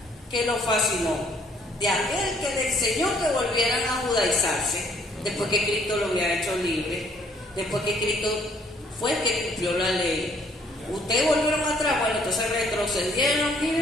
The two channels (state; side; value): normal; both; correlation 0.63